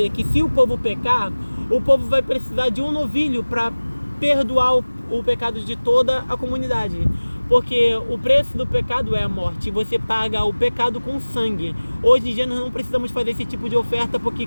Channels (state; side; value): inverted; both; correlation -1.00